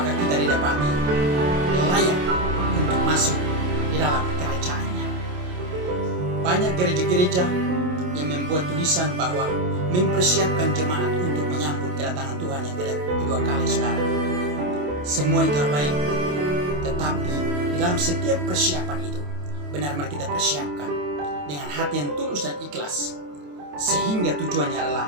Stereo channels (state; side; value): late; left; 28 ms